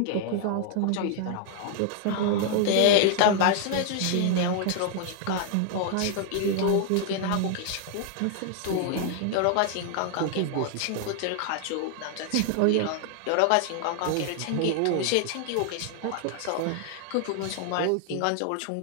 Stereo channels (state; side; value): different; both; correlation 0.00